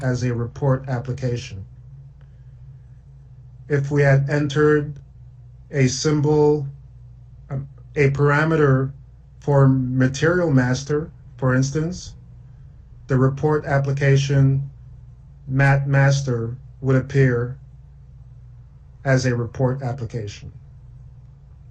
as a report application. If we had entered a symbol, a parameter for material master, for instance, the report application mat master would appear as a report application.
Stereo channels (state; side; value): identical; both; correlation 1.00